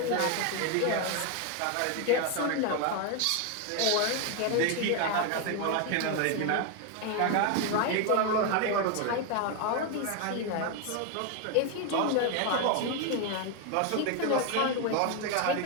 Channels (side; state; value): both; different; correlation 0.01